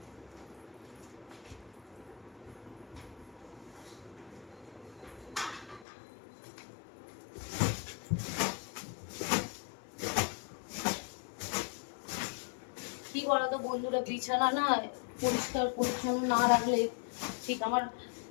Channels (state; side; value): drops out; right; at 5.9 s